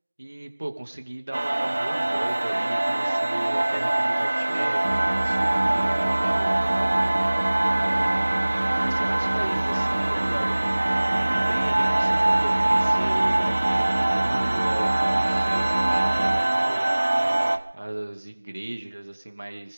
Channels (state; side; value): inverted; both; correlation -1.00